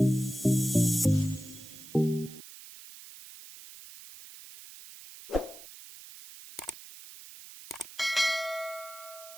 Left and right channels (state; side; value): noise; right; hiss, 16 dB below the sound